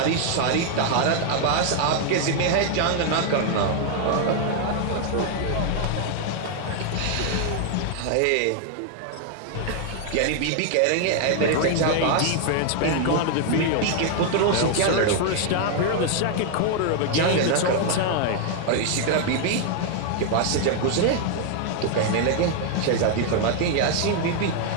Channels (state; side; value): different; both; correlation 0.00